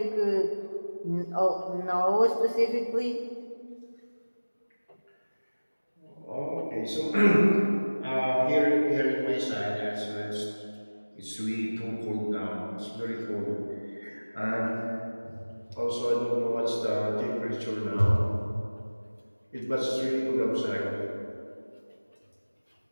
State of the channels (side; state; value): both; inverted; correlation -1.00